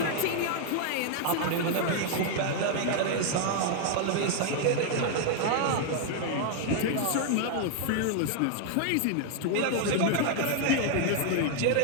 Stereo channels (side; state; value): both; different; correlation 0.00